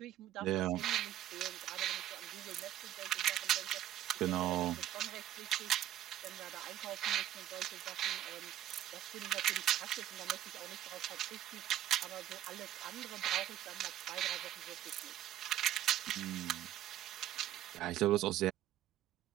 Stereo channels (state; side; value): quieter; left; 12.6 dB